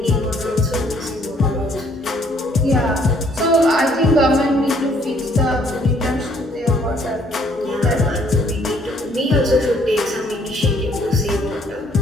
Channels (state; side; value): normal; both; correlation 0.63